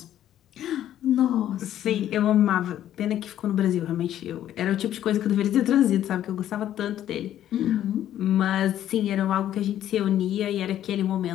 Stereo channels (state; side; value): quieter; right; 11.6 dB